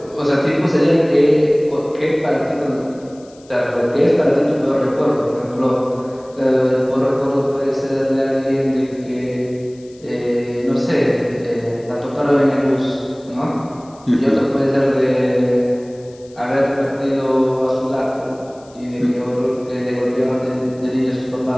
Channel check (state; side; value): noise; left; hiss, 28 dB below the sound